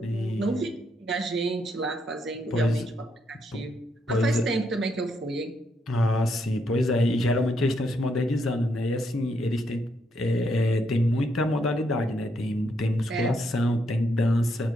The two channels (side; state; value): both; normal; correlation 0.76